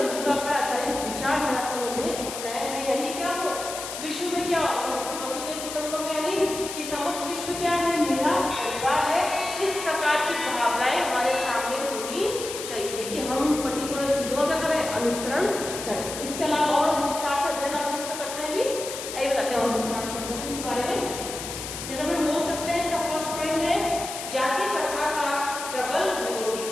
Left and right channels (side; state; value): left; noise; hiss, 8 dB below the sound